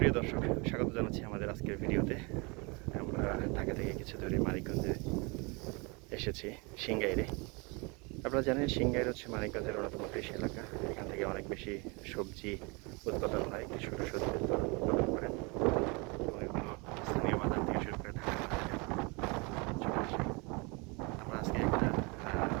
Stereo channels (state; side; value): quieter; left; 29.3 dB